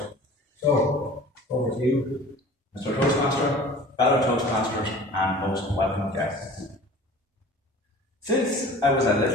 So, over to you. Mr. Toastmaster, fellow Toastmasters, and most welcome guests. Since I was a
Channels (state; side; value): normal; both; correlation 0.43